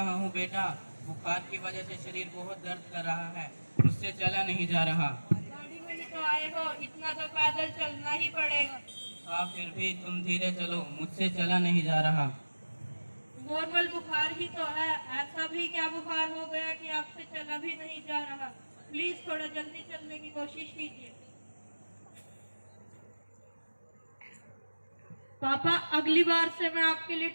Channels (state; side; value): inverted; both; correlation -1.00